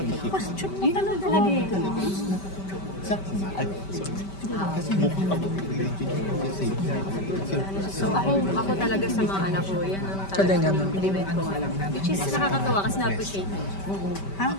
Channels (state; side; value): late; right; 5.2 ms